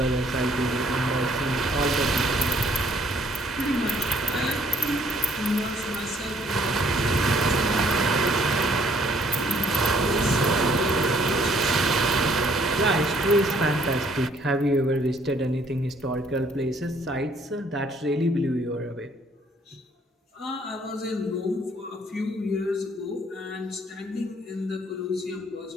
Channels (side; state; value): both; normal; correlation 0.63